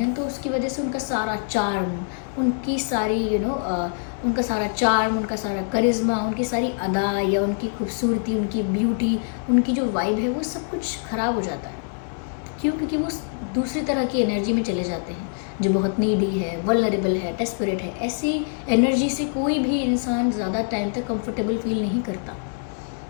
तो उसकी वजह से उनका सारा चार्म, उनकी सारी उनका सारा चार्म, उनका सारा करिश्मा, उनकी सारी अदा या उनकी खूबसूरती, उनकी ब्यूटी, उनकी जो वाइब है, वो सब कुछ ख़राब हो जाता है। क्यों? क्योंकि वो दूसरी तरह की एनर्जी में चले जाते हैं जो बहुत नीडी है, वल्नरेबल है, डेस्परेट है। ऐसी एनर्जी से कोई भी इंसान ज़्यादा टाइम तक कंफर्टेबल फील नहीं करता।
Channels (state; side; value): silent; right; 62 dB below the other